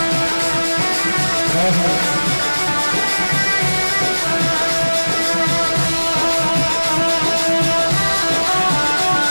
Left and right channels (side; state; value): both; inverted; correlation -1.00